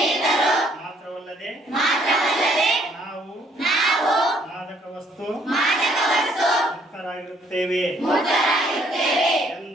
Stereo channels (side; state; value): both; normal; correlation 0.65